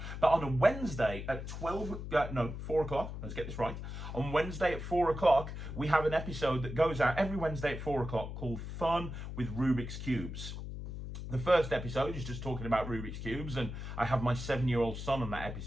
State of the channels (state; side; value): noise; left; hum, 7 dB below the sound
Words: But on a Wednesday at 4 o'clock, let's get this right, on Wednesday at 4 o'clock, we have an episode that goes out every Wednesday at 4 o'clock called Fun with Rubik's Cubes. The first episode is just talking about Rubik's Cubes, and I have my 7-year-old son on that